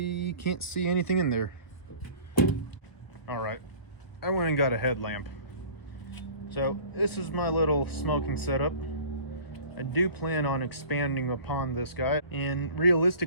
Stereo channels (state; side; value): late; right; 1.3 ms